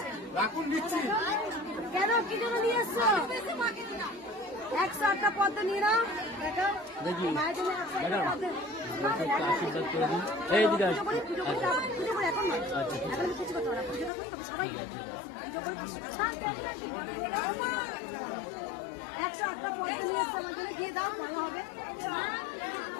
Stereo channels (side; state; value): right; drops out; at 14.1 s